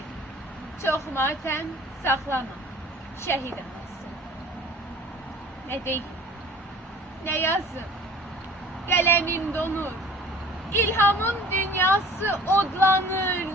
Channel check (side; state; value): both; normal; correlation 0.47